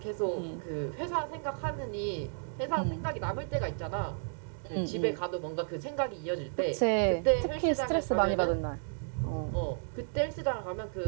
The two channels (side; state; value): left; silent; digital silence